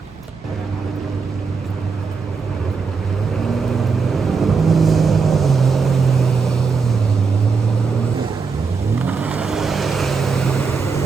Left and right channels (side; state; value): left; quieter; 5.1 dB